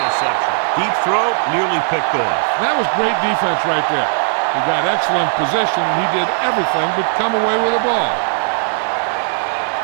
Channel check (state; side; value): silent; left; 61 dB below the other